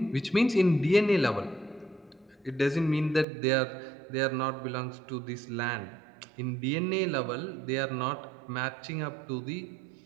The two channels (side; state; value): left; drops out; at 3.2 s